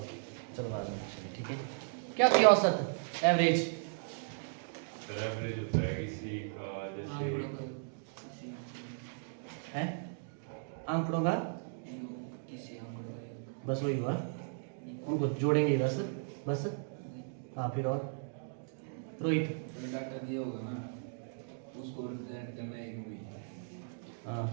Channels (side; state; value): left; silent; digital silence